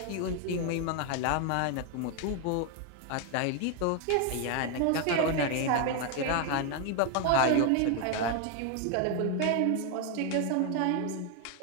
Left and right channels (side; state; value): both; different; correlation 0.01